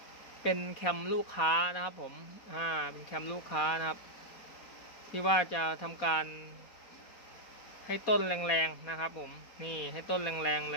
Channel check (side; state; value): right; late; 4.2 ms